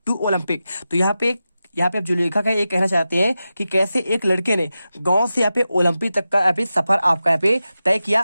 to Olympic. तो यहाँ पे आप जो लेखक है ये कहना चाहते हैं कि कैसे एक लड़के ने गांव से यहाँ पे ओलंपिक तक का यहाँ पे सफर आपका यहाँ पे तय किया।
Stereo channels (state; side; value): inverted; both; correlation -0.92